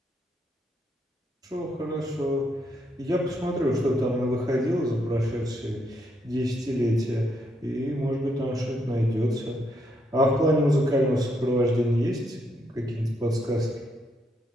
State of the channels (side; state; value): both; normal; correlation 0.76